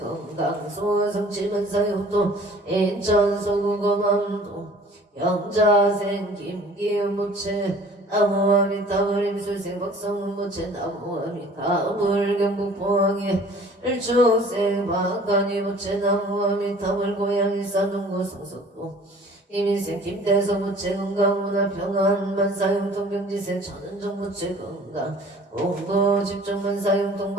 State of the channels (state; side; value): normal; both; correlation 0.49